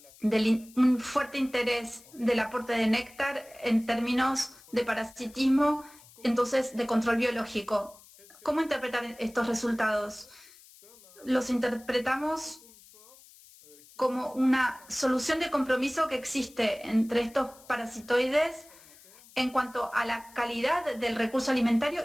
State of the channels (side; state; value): left; noise; hiss, 24 dB below the sound